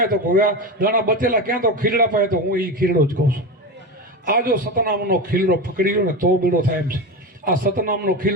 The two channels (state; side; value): normal; both; correlation 0.21